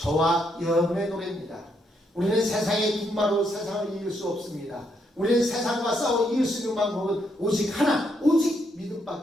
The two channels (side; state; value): both; normal; correlation 0.76